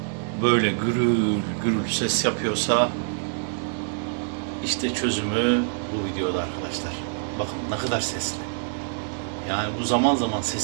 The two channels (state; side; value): silent; left; digital silence